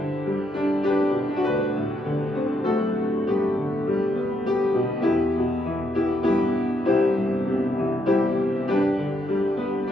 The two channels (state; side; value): normal; both; correlation 0.76